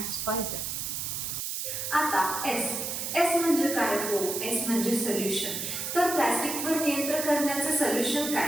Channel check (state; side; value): noise; right; hiss, 3 dB below the sound